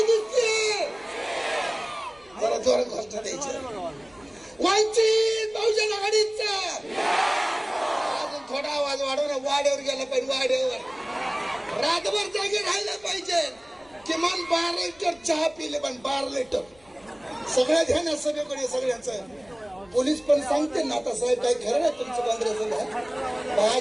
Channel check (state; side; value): noise; left; rumble, 29 dB below the sound